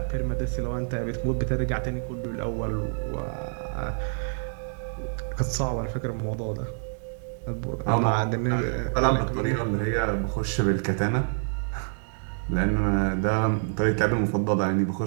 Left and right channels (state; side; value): silent; left; digital silence